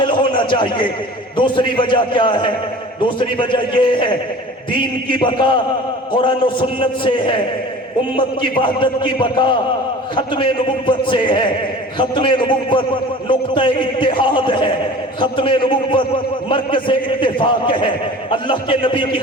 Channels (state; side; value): normal; both; correlation 0.41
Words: ہونا چاہیے۔ دوسری وجہ کیا ہے؟ دوسری وجہ یہ ہے دین کی بقا قرآن و سنت سے ہے، امت کی وحدت کی بقا ختم نبوت سے ہے۔ ختم نبوت نقطہ اتحاد ہے، ختم نبوت مرکز اتفاق ہے۔ اللہ کے نبی کی